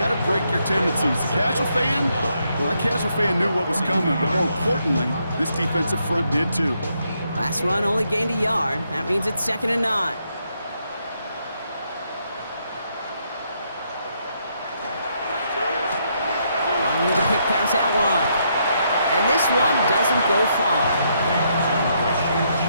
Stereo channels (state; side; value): inverted; both; correlation -0.76